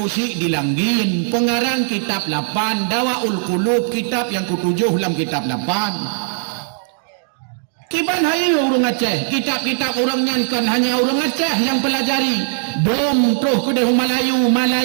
cik di langgin pengarang kitab 8 Dawaul Qulub kitab yang ke-7 dalam kitab 8 kiban hai urang Aceh kitab-kitab urang nyankan hanya urang Aceh yang pelajari dom terus ke Melayu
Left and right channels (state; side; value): silent; left; digital silence